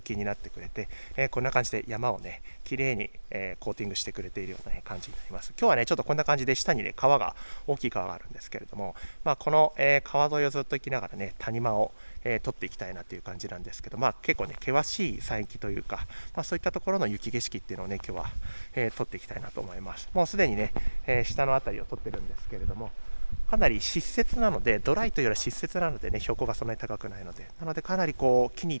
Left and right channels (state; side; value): inverted; both; correlation -1.00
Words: になってくれて、こんな感じで山をね綺麗に、コーティングしてくれているような、感じになります。今日はねちょっとこんな感じで下にね川が大きい川があるんですけれども、この、川沿いをずっと行きながらね谷間を取っていきたいなという感じなんですけど、結構ね険しい山域というか、そういったところの雪景色っていうのをね今日は、撮っていきたいなと思います。もうすでにね、下の辺りを撮ってるんですけれども、かなり湿雪なので、ドライというよりは湿雪なのでね標高がそんなに高くないので、かなりこう木に